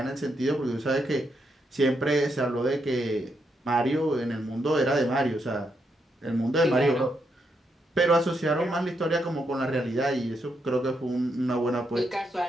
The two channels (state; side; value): normal; both; correlation 0.80